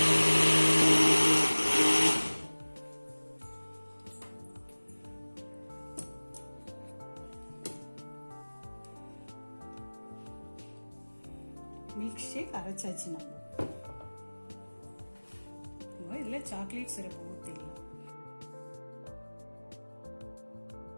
மில்க் ஷேக் அரைச்சாச்சு. நம்ம இதுல சாக்லேட் சிரப் ஊத்திடலாம்.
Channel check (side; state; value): both; inverted; correlation -1.00